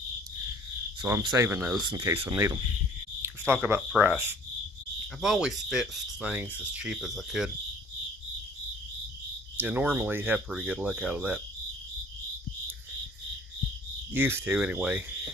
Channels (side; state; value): both; normal; correlation 0.53